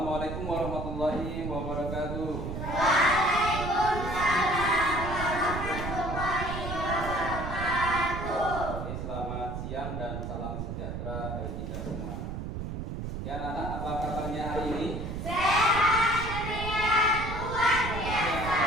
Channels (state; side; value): noise; right; rumble, 5 dB below the sound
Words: Assalamualaikum warahmatullahi wabarakatuh. Waalaikumsalam warahmatullahi wabarakatuh. Oke, selamat siang dan salam sejahtera bagi kita semua. Ya anak-anak, apa kabarnya hari ini? Sehat ceria luar biasa.